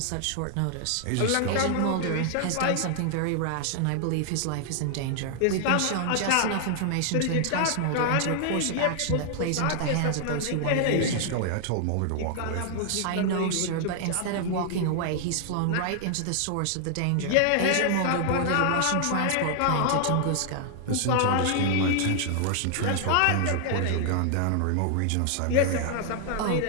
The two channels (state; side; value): different; both; correlation 0.00